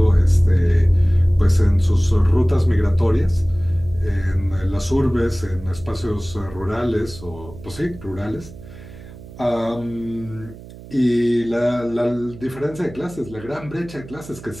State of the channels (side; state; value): right; noise; hum, 17 dB below the sound